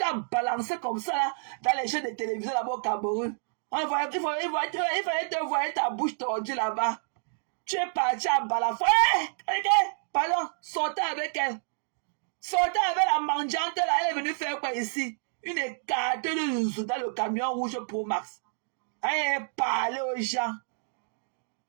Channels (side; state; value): left; silent; digital silence